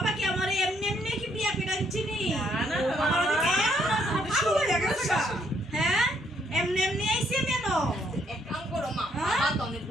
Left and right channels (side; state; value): both; normal; correlation 0.70